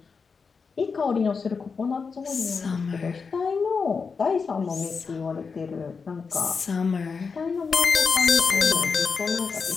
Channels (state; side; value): quieter; right; 5.2 dB